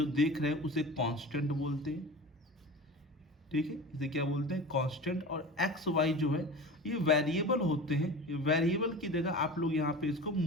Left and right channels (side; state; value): both; normal; correlation 0.33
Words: देख रहे हैं उसे कांस्टेंट बोलते हैं। ठीक है, इसे क्या बोलते हैं, कांस्टेंट। और एक्स वाई जो है ये वेरिएबल होते हैं। ये वेरिएबल की जगह आप लोग यहाँ पे इसको